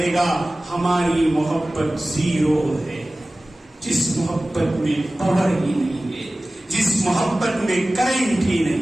گا ہماری محبت زیرو ہے. جس محبت میں پاور ہی نہیں ہے، جس محبت میں کرنٹ ہی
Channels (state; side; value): normal; both; correlation 0.97